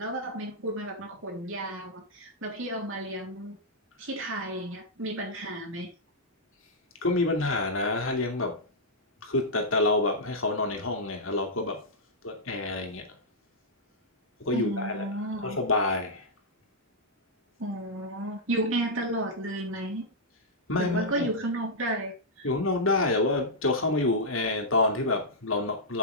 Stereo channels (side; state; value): both; normal; correlation -0.09